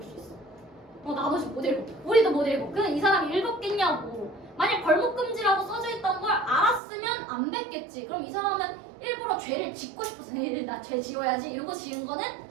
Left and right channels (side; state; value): left; drops out; at 6.8 s